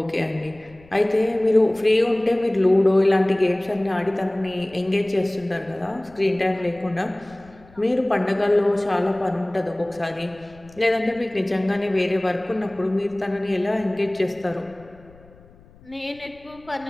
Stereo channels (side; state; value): left; noise; rumble, 25 dB below the sound